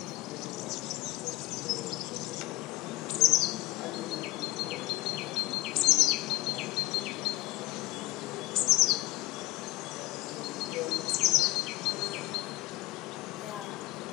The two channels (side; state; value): right; quieter; 18.8 dB